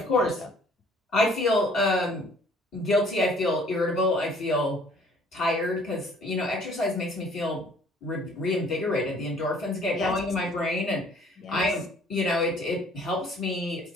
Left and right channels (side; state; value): both; normal; correlation 0.56